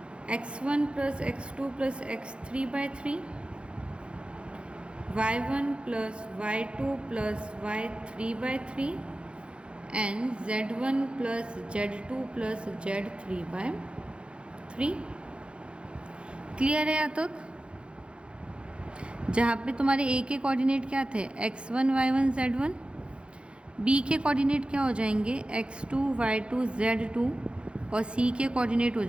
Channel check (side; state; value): left; late; 0.057 ms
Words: x1 plus x2 plus x3/3, y1 plus y2 plus y3/3 and z1 plus z2 plus z3/3। Clear है यहाँ तक? जहाँ पे तुम्हारे a के कोऑर्डिनेट क्या थे, x1 y1 z1, b के कोऑर्डिनेट क्या हो जाएंगे, x2 y2 z2, और c के कोऑर्डिनेट हो